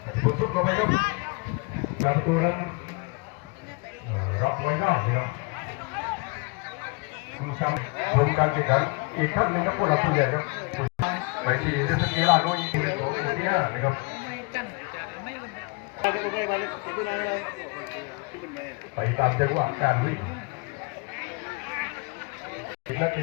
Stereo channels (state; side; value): quieter; right; 30.8 dB